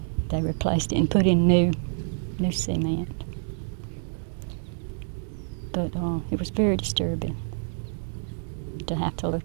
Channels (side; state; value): left; silent; digital silence